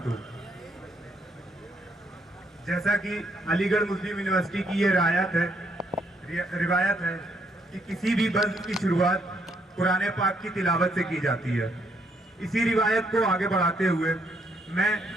जैसा कि अलीगढ़ मुस्लिम यूनिवर्सिटी की ये रिवायत है कि किसी भी बज़्म की शुरुआत कुरान पाक की तिलावत से की जाती है। इसी रिवायत को आगे बढ़ाते हुए मैं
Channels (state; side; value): normal; both; correlation 0.72